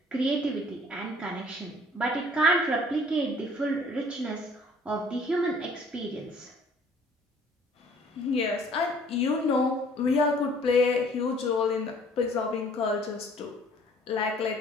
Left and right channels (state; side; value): normal; both; correlation 0.55